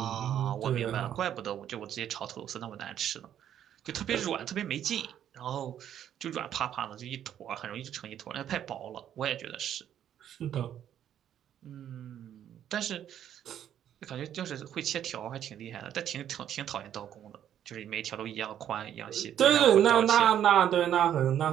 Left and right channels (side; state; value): left; quieter; 10.3 dB